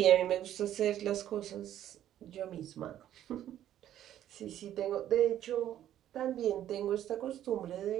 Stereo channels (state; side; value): quieter; left; 11.7 dB